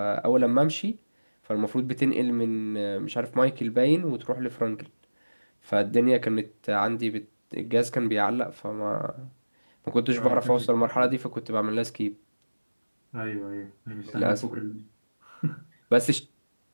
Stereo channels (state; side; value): inverted; both; correlation -1.00